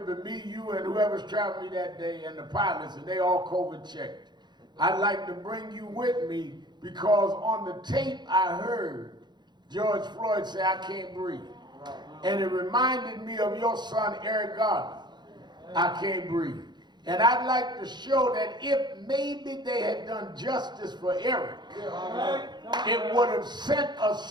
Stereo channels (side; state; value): left; late; 0.21 ms